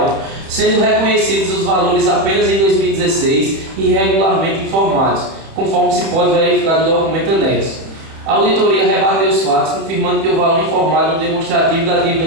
sendo reconhecidos os valores apenas em 2016 e irregularmente informados, conforme se pode verificar do documento anexo. A auditoria rebateu os fatos, confirmando que o valor informado no demonstrativo da dívida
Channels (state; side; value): late; left; 31 ms